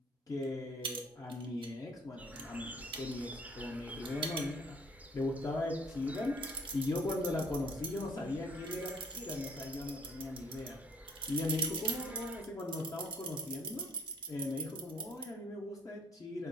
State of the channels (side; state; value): both; normal; correlation 0.61